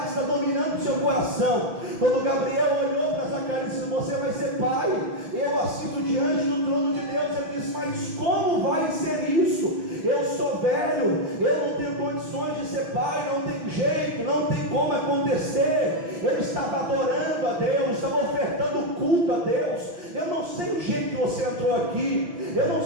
está dominando o seu coração. Quando Gabriel olhou para Zacarias e disse: você vai ser pai, eu assisto diante do trono de Deus, ele disse: mas como vai ser isso? Eu sou velho, eu não tenho condições de ser pai, não tem jeito, não tem como acontecer. Ele estava adorando a Deus, estava ofertando culto a Deus. Eu não sei o jeito que você entrou aqui, eu não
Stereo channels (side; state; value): left; late; 6.0 ms